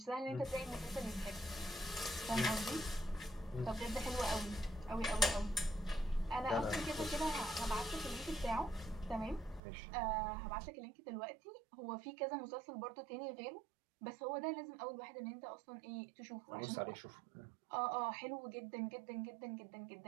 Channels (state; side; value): drops out; left; at 9.6 s